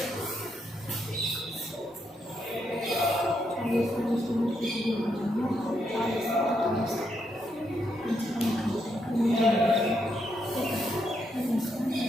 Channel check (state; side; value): normal; both; correlation 0.79